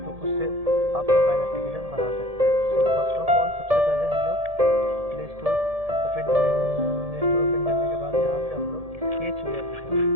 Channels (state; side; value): late; left; 1.7 ms